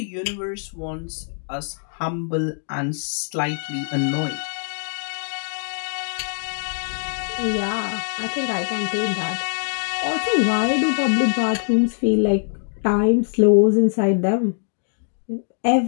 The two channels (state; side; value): silent; right; 64 dB below the other